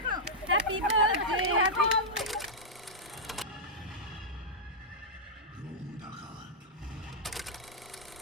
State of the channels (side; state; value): both; normal; correlation -0.10